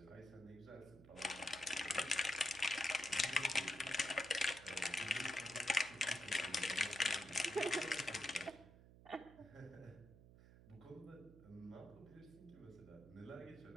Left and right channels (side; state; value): right; noise; hum, 20 dB below the sound